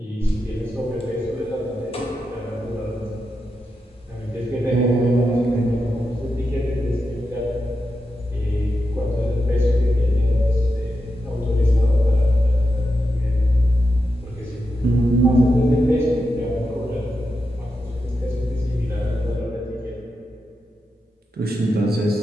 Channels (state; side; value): normal; both; correlation 0.88